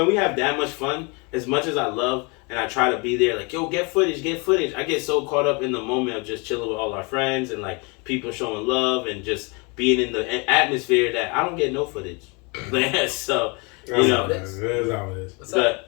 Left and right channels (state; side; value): quieter; right; 30.5 dB